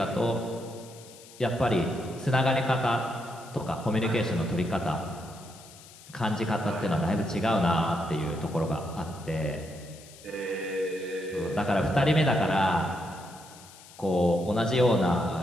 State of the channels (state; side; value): noise; left; hiss, 20 dB below the sound